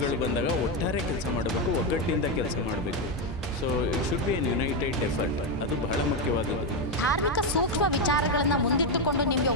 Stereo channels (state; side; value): normal; both; correlation 0.07